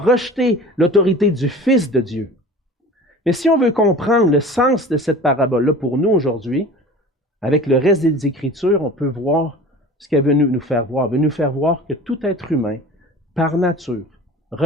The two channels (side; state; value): both; normal; correlation 0.40